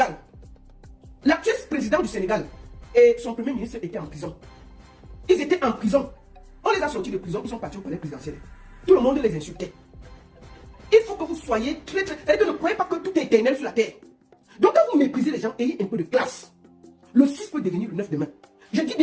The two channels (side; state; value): both; identical; correlation 1.00